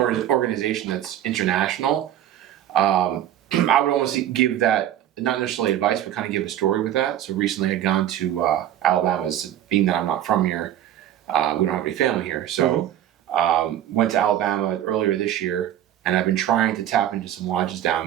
organization that's international. I would almost give that, not necessarily advice, but kind of give a story with that. So recently I'd gone to Alabama, being that I'm not from here. We don't have any family here. So went to Alabama earlier this year, and I've been trying to tap into some lodges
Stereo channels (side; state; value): left; quieter; 11.6 dB